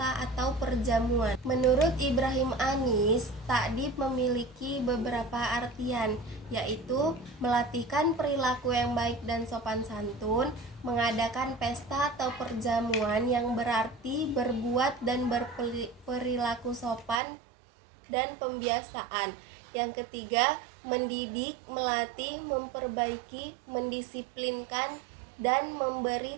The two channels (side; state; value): left; drops out; at 17.2 s